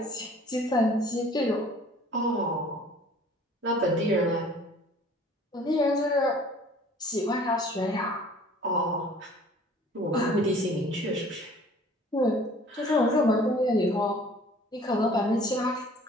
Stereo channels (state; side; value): normal; both; correlation 0.51